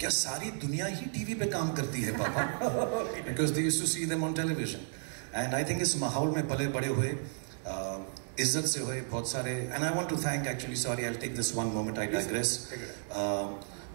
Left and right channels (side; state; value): left; silent; digital silence